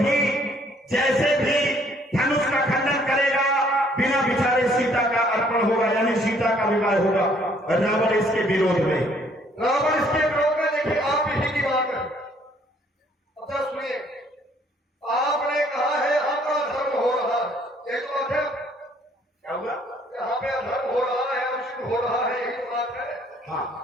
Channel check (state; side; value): normal; both; correlation 0.63